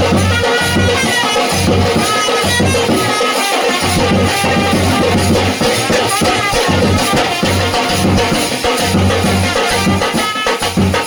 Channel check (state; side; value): identical; both; correlation 1.00